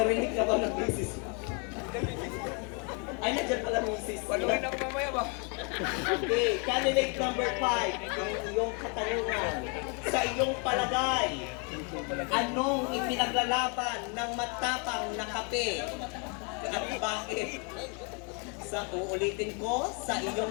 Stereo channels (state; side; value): quieter; right; 35.4 dB